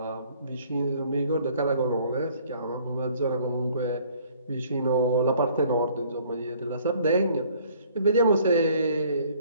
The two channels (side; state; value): both; inverted; correlation -0.58